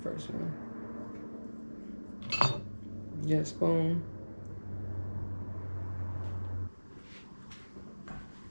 first one. Get a spoon.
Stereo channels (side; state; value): both; inverted; correlation -1.00